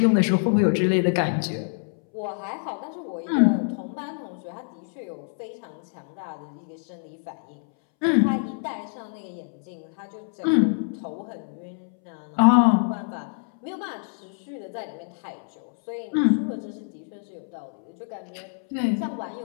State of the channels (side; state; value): right; silent; 61 dB below the other